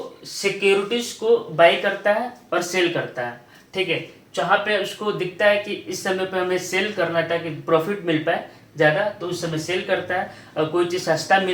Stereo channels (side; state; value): both; identical; correlation 1.00